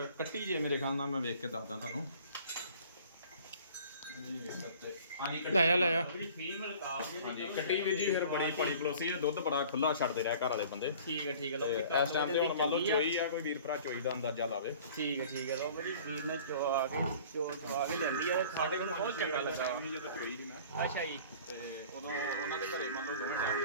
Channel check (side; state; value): both; inverted; correlation -0.47